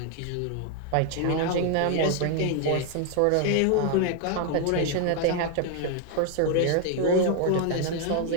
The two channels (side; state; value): both; different; correlation 0.00